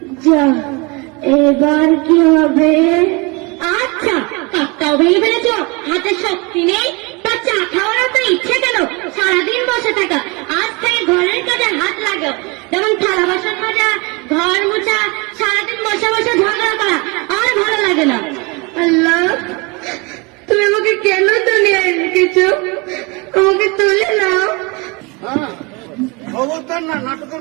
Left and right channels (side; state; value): left; quieter; 28.2 dB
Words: যা, এবার কি হবে? আচ্ছা, কাপটাও ভেঙে ফেলেছ, হাতে শক্তি নেই, তা চা খাওয়ার তো ইচ্ছে কেন? সারাদিন বসে থাকা, আজ থেকে ঘরের কাজে হাত লাগাও, যেমন থালা বাসন মাজা, ঘর মোছা, সারাদিন বসে বসে ঝগড়া করা আর ভালো লাগে না। আল্লাহ, তুমি আমাকে কেন দুনিয়ায় রেখেছো? আমাকে তুলে নাও। হ্যাঁ, খবরদার না, নাটকের